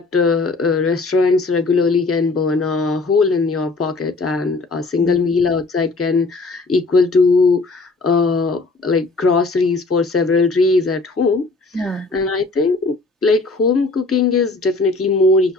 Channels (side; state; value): right; quieter; 3.5 dB